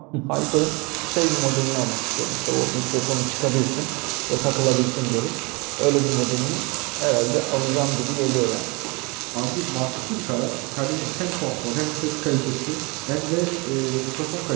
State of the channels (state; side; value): quieter; left; 28.1 dB